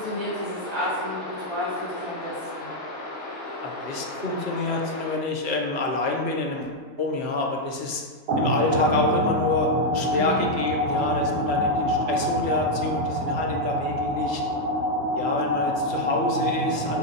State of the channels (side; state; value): left; late; 7.8 ms